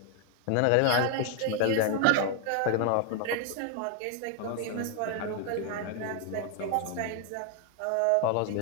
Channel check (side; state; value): both; different; correlation 0.01